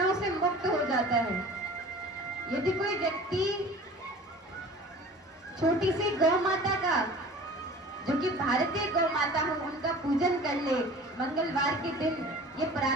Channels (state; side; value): normal; both; correlation 0.43